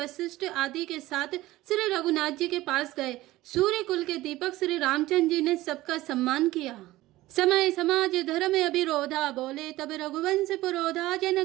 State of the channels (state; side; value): quieter; left; 17.3 dB